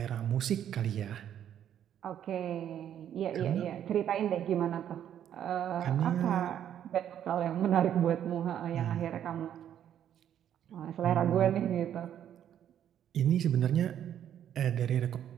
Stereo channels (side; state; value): left; quieter; 10.1 dB